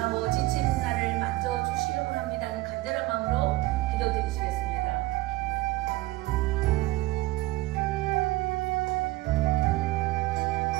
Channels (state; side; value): quieter; left; 18.9 dB